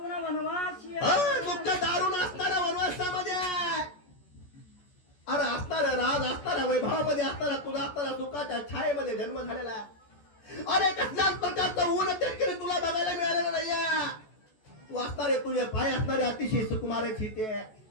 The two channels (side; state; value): right; late; 14 ms